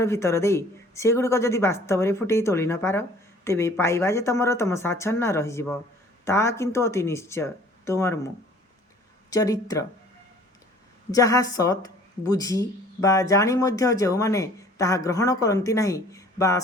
भितर दे सेगुड़िक जदि वास्तव में फुटे तोली न पार तेबे पाइबा जे तुम साच्छन्न रही ता किंतु अति निश्चय तुमर मु चरित्र जहा सत बुझी बा जानी मध्य जो माने ताहा ग्रहण करती नहीं बा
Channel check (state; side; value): normal; both; correlation 0.52